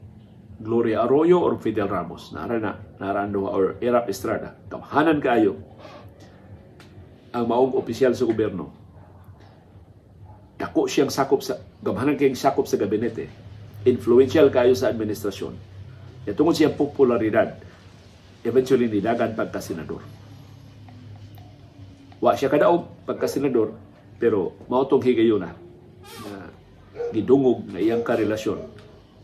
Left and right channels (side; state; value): both; identical; correlation 1.00